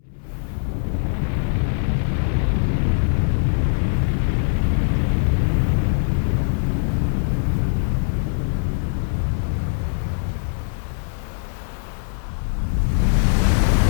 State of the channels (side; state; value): right; silent; 65 dB below the other